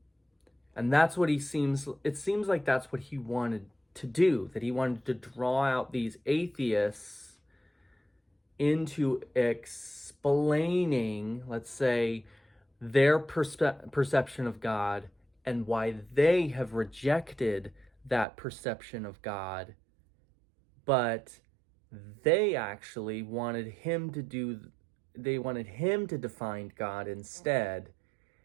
And that's what it seems like that's what he wanted to do, that he wanted to draw out these atheists into explaining, let's say, their perception of God and why they have rejected that perception of God. But they actually wanted him to define God instead,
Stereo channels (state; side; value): drops out; left; at 18.2 s